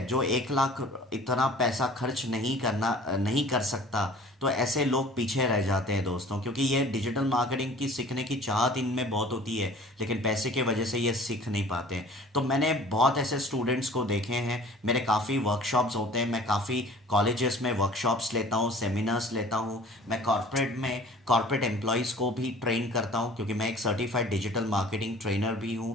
जो 1 लाख इतना पैसा खर्च नहीं कर सकता, तो ऐसे लोग पीछे रह जाते हैं दोस्तों, क्योंकि ये डिजिटल मार्केटिंग की सीखने की चाहत इनमें बहुत होती है लेकिन पैसे की वजह से ये सीख नहीं पाते। तो मैंने बहुत ऐसे स्टूडेंट्स को देखे हैं, मेरे काफ़ी वर्कशॉप्स होते हैं, मैं काफ़ी कॉलेजेस में वर्कशॉप्स लेता हूँ, सेमिनार्स लेता हूँ। मैं कॉर्पोरेट एम्प्लॉयज़ को भी ट्रेन करता हूँ क्योंकि मैं एक सर्टिफाइड डिजिटल मार्केटिंग ट्रेनर भी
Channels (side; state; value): both; normal; correlation 0.47